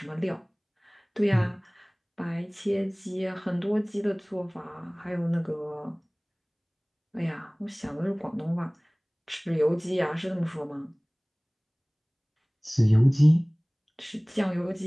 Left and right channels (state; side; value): identical; both; correlation 1.00